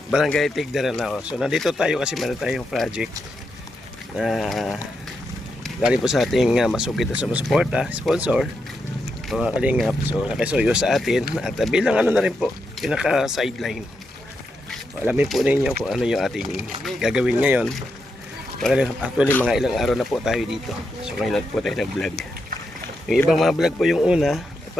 Barangay Tigdaran na. So nandito tayo kasi meron tayong project na galing po sa ating masugid na sumusuporta, sponsor, mga kalingap. So nakisuyo sa atin at bilang ano na rin po, pinaka-sideline. Alamin po ninyo kung ano yung ating gagawin ngayon. Actually mga ilang araw na po tayo dito. So ngayon po tayo nag-vlog. Yung ibang mga vlog po yung una,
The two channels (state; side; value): normal; both; correlation 0.84